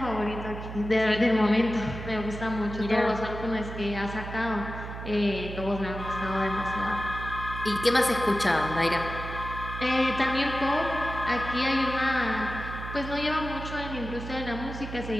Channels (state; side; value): noise; right; hum, 9 dB below the sound